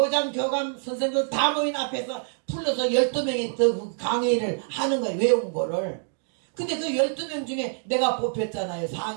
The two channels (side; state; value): left; silent; 61 dB below the other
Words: 교감 선생님들 다 모인 앞에서 불러서 12명이 더 강의를 하는 거예요. 외운 거를. 근데 그 12명 중에 내가 뽑혔잖아요.